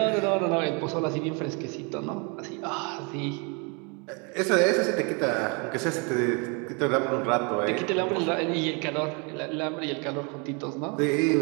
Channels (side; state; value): left; quieter; 33.1 dB